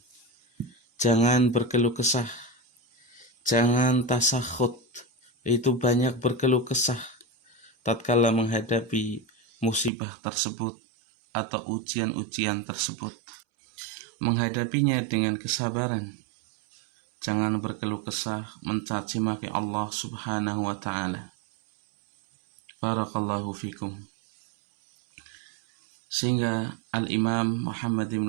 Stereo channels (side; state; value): left; drops out; at 9.9 s